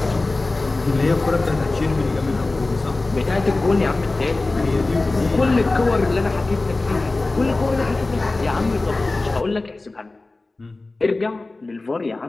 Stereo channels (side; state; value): right; quieter; 3.2 dB